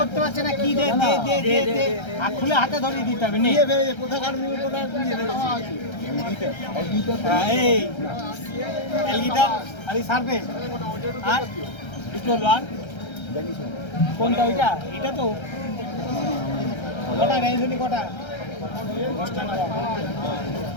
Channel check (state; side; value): late; right; 1.3 ms